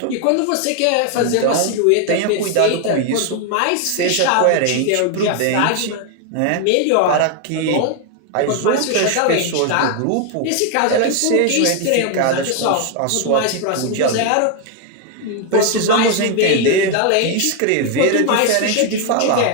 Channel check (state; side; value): different; both; correlation 0.01